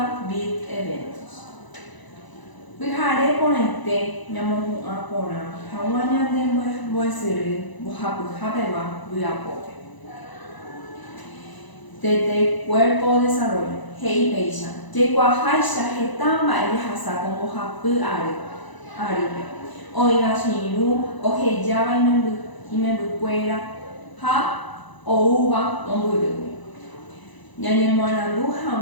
Bit Eventos. Vijare ponente, Yamohu Apona, Hawaña de Boisiri, Bohapu Habeba, Viapoke. Desde Cuerpo Desarrollo, Hei Peisha, Jequahaisha, Hetamba, Elihasa, como Bohapu Aribe. Oiga, Shiru, Ojeyaba y Mebuquera, Ha, Ouba, Omburu. Yanyemorandu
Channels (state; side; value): late; right; 1.0 ms